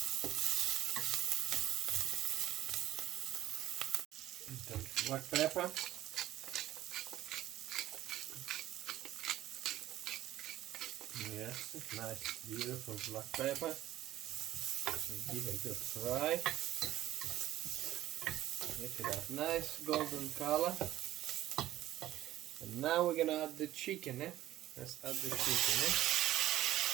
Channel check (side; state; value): left; quieter; 14.1 dB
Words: Black pepper. Yes, nice, beautiful black pepper. So give it a good fry. Look at that, nice golden color. And now we're gonna add the chicken. Let's add the chicken.